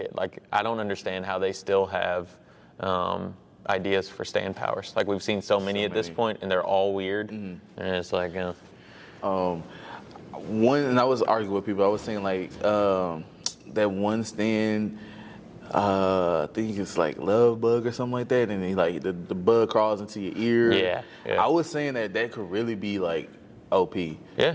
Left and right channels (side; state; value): both; identical; correlation 1.00